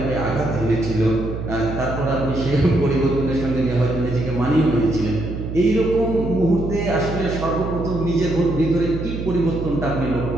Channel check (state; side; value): noise; right; hum, 6 dB below the sound